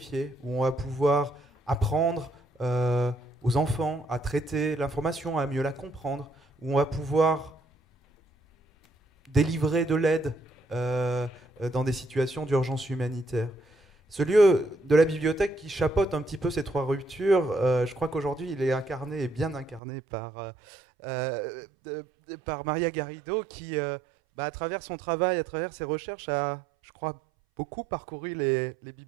où on va pouvoir apprendre aux enfants à traiter l'information, à mieux la comprendre, où on va pouvoir délivrer de l'aide dans des situations d'urgence humanitaire. Ce lieu de la bibliothèque qui chapeaute un petit peu ces trois ruptures, je crois qu'aujourd'hui il est incarné et bien incarné par Maria Garrido qui, à travers son travail, à travers ses recherches, a, je crois, beaucoup parcouru les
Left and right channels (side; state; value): left; drops out; at 19.8 s